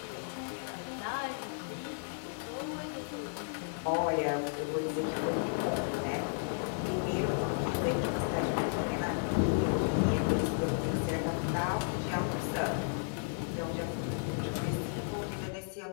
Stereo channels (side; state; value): right; silent; digital silence